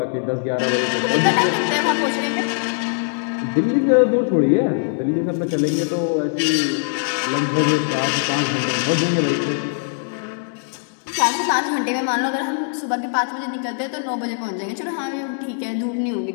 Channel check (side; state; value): right; silent; digital silence